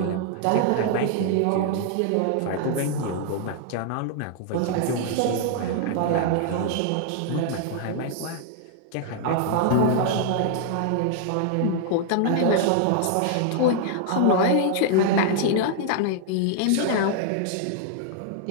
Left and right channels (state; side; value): different; both; correlation 0.00